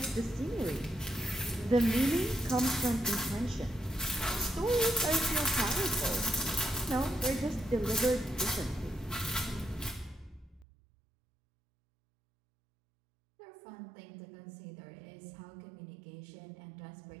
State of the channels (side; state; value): left; drops out; at 10.7 s